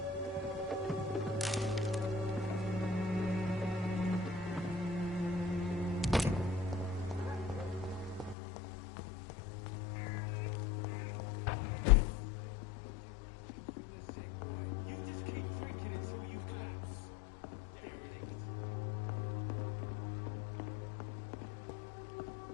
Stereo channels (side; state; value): right; drops out; at 8.3 s